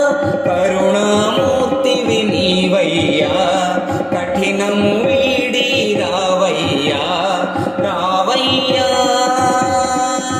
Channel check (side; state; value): both; identical; correlation 1.00